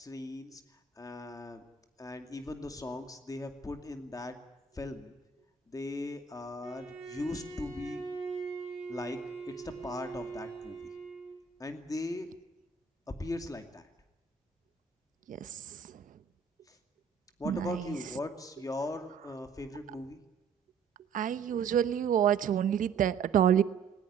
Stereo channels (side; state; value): left; quieter; 5.8 dB